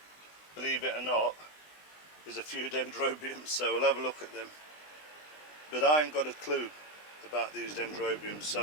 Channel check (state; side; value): late; right; 20 ms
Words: believe it or not, is a few dendrobiums, so we'll have a look at them. But I ain't got a clue about these dendrobiums,